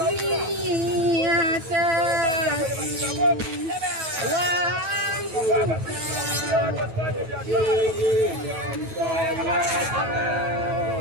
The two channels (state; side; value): late; left; 9.4 ms